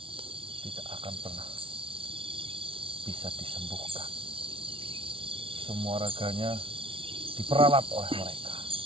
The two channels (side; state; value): left; late; 0.25 ms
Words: tidak akan pernah bisa disembuhkan. Semua raganya diperalat oleh mereka.